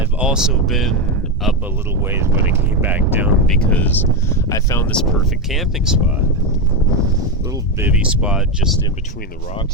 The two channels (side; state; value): both; normal; correlation 0.10